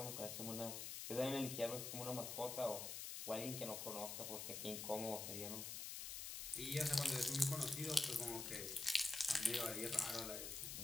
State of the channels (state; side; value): noise; left; hiss, 5 dB below the sound